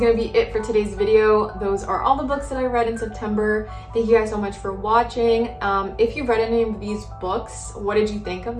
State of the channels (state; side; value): identical; both; correlation 1.00